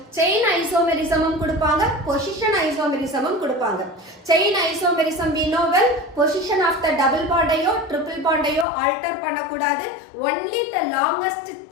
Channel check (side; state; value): right; drops out; at 8.7 s